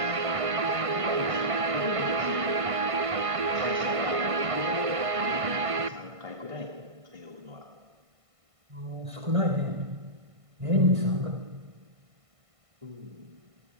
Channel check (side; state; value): left; late; 1.5 ms